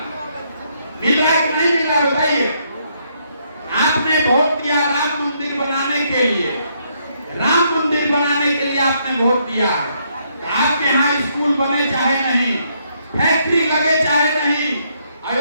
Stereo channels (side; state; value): both; inverted; correlation -0.73